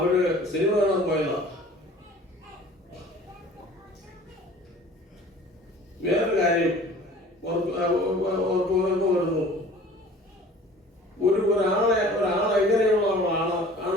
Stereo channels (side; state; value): both; normal; correlation 0.47